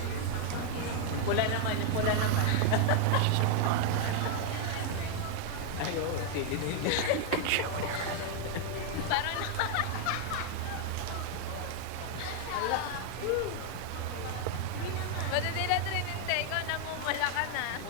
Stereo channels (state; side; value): different; both; correlation 0.00